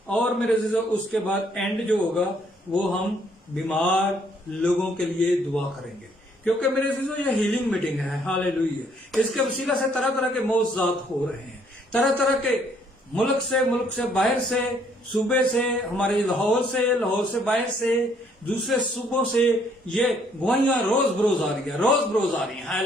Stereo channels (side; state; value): both; normal; correlation 0.66